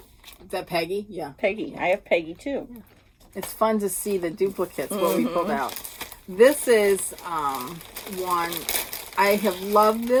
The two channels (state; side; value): identical; both; correlation 1.00